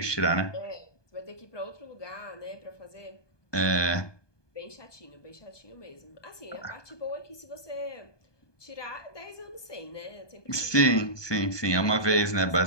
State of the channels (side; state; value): right; late; 1.2 ms